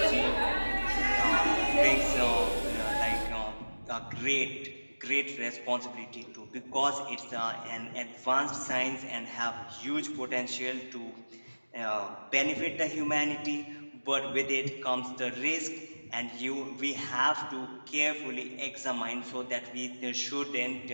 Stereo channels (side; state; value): both; inverted; correlation -1.00